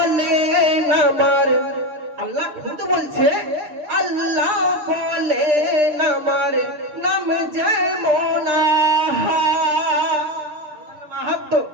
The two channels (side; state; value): left; late; 6.6 ms